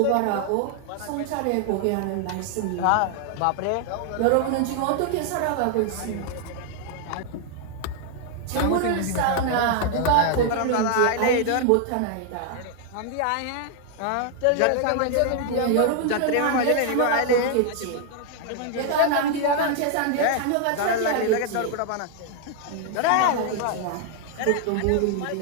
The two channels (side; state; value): both; different; correlation 0.00